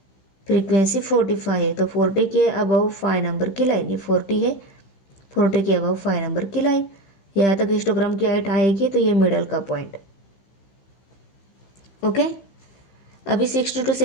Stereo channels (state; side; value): late; right; 15 ms